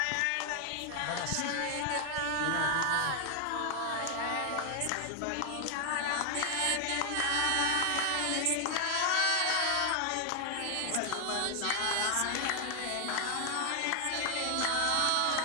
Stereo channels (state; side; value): different; both; correlation 0.00